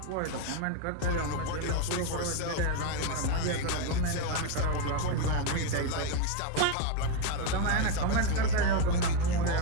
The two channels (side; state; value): both; different; correlation 0.03